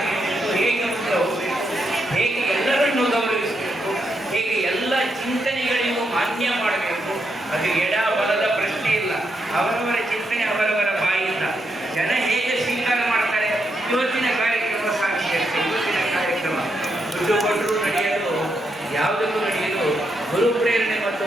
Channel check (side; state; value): both; normal; correlation 0.81